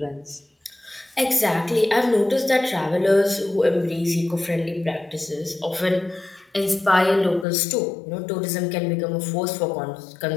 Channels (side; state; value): right; drops out; at 7.5 s